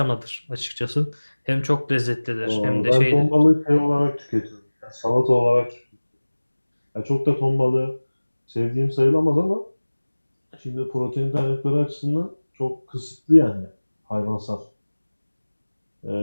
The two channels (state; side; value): inverted; both; correlation -1.00